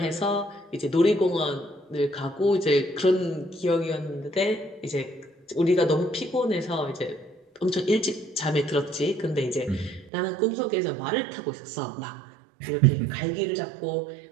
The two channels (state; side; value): drops out; left; at 10.1 s